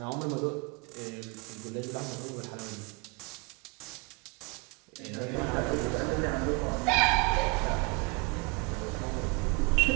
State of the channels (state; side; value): quieter; left; 30.0 dB